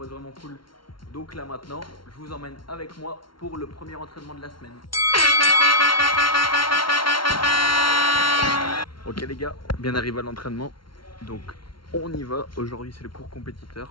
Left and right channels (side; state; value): right; late; 0.73 ms